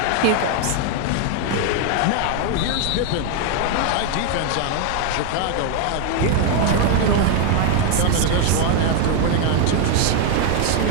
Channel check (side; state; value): both; different; correlation 0.00